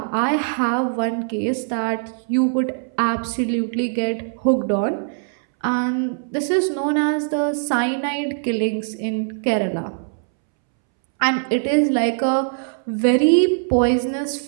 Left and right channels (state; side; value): silent; left; 65 dB below the other